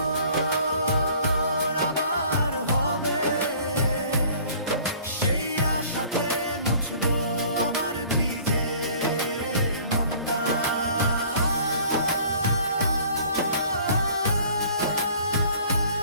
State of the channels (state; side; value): inverted; both; correlation -0.51